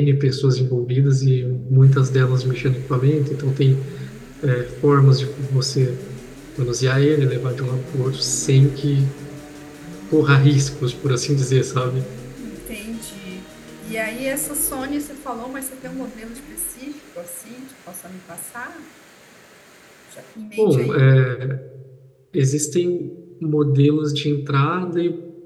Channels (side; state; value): both; identical; correlation 1.00